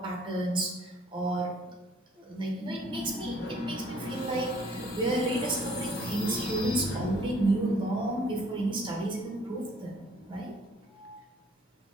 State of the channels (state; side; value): normal; both; correlation 0.59